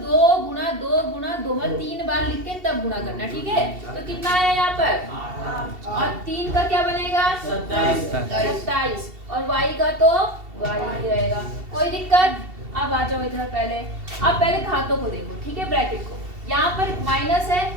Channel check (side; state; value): left; late; 2.7 ms